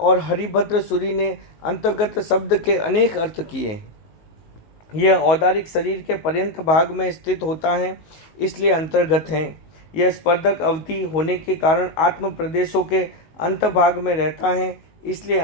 हरिभद्र सूरी ने अंतर्गत शब्द के अनेक अर्थ किए। यह औदारिक शरीर के पर्यंत भाग में स्थित होता है, इसलिए अंतर्गत है। यह स्पर्धक अवधि होने के कारण आत्म प्रदेशों के अंतभाग में रहता है, इसलिए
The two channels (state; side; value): late; right; 19 ms